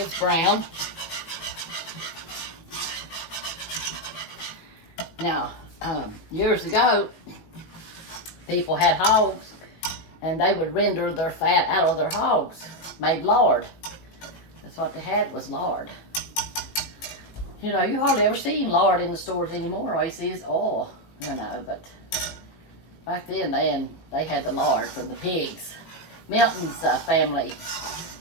brown. Now, years ago, people had hogs, and they would render their fat out of their hogs, made lard. That's what they had, was lard. You know, you hardly ever see lard in the stores anymore. All you see is oil, you know, but back then they had the lard from the pigs. Milton's family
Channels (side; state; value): right; late; 18 ms